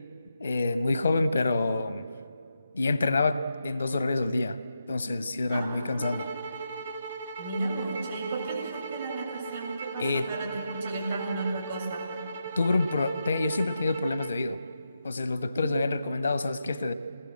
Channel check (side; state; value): both; inverted; correlation -0.85